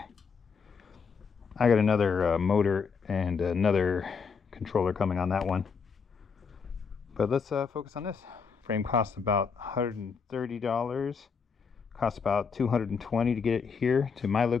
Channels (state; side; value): quieter; right; 5.8 dB